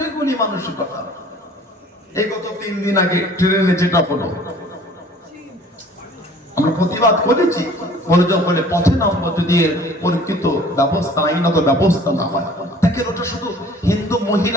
এগুলি মানসিকতা? এই গত 3 দিন আগে ট্রেনে যেটা হলো, আমরা প্রতিবাদ করেছি, বলে পথে নামবো যদি পরীক্ষিত ব্যবস্থা, আইনত ব্যবস্থা না হয়। দেখেন, ওটা শুধু হিন্দু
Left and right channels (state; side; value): normal; both; correlation 0.50